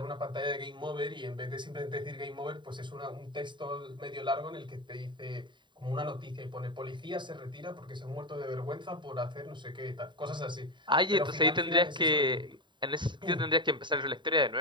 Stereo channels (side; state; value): left; late; 0.23 ms